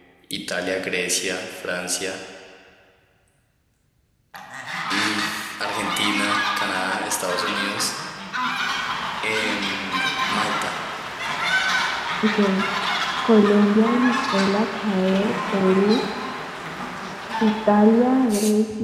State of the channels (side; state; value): both; identical; correlation 1.00